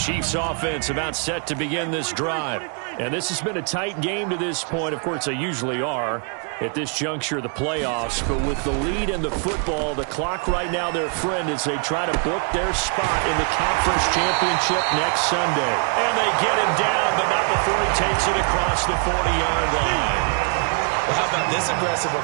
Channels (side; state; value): left; quieter; 39.3 dB